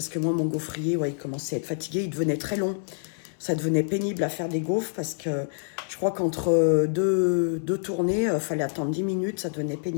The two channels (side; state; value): right; silent; 60 dB below the other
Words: que moi, mon gaufrier, ouais, il commençait à être fatigué, il devenait très long, ça devenait pénible à faire des gaufres, parce que je crois qu'entre deux tournées, fallait attendre 10 minutes, ça devenait